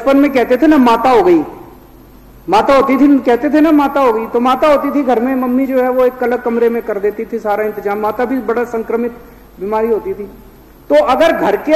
में कहते थे ना माता हो गई, माता होती थी, कहते थे ना माता हो गई। तो माता होती थी घर में, मम्मी जो है वो एक अलग कमरे में कर देती थी सारा इंतजाम। माता भी बड़ा संक्रमित बीमारी होती थी। तो अगर घर के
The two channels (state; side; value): identical; both; correlation 1.00